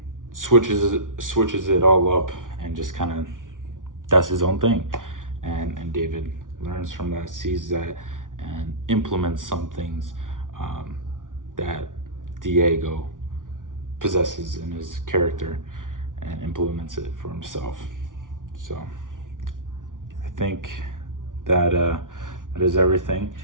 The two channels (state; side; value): late; left; 0.88 ms